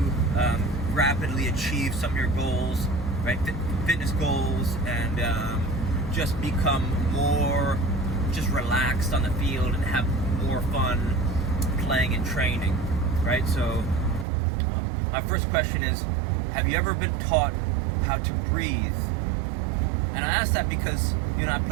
rapidly achieve some of your goals, right? Fitness goals, and just become more just relaxed on the field and have more fun playing and training, right? So my first question is, have you ever been taught how to breathe? And I ask that because, you know, I've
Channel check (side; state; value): left; drops out; at 14.2 s